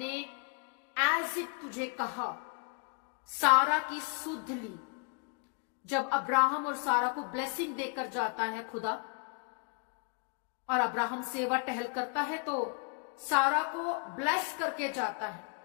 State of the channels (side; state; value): right; quieter; 38.9 dB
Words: एज इट तुझे कहा, सारा की सुध ली। जब अब्राहम और सारा को ब्लेसिंग देकर जाता है खुदा, और अब्राहम सेवा टहल करता है, तो सारा को ब्लेस करके जाता है